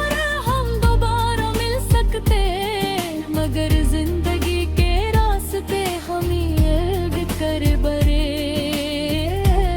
हम दोबारा मिल सकते, मगर जिंदगी के रास्ते हम ये कर बरे।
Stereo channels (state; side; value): identical; both; correlation 1.00